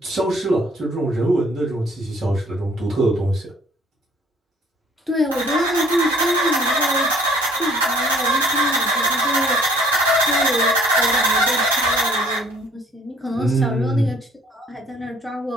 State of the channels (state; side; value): normal; both; correlation 0.59